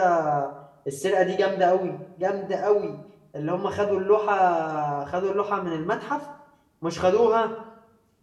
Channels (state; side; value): identical; both; correlation 1.00